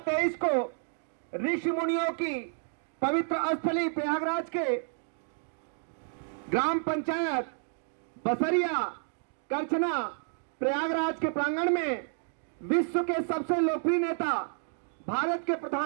को ऋषि मुनियों की पवित्र स्थली प्रयागराज के ग्राम पंचायत बसरिया करछना प्रयागराज के प्रांगण में विश्व के सबसे लोकप्रिय नेता भारत के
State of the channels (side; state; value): left; silent; 58 dB below the other